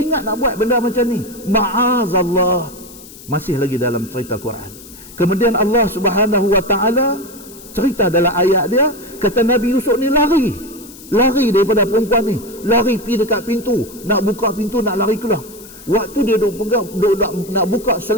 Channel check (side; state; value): left; noise; hiss, 19 dB below the sound